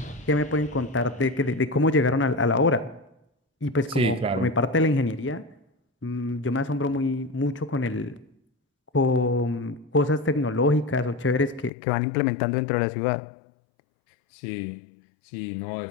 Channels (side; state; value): right; drops out; at 11.7 s